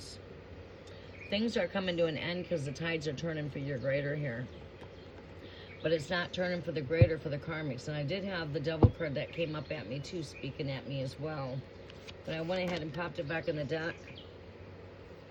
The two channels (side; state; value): both; identical; correlation 1.00